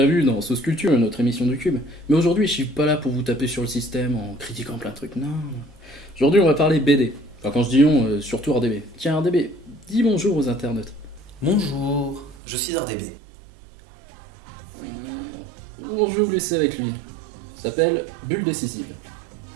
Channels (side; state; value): left; drops out; at 12.4 s